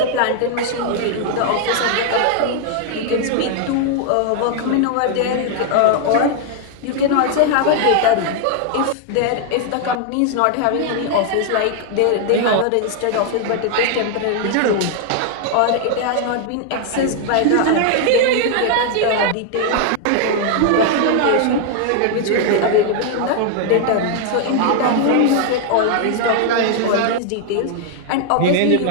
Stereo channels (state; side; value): different; both; correlation 0.00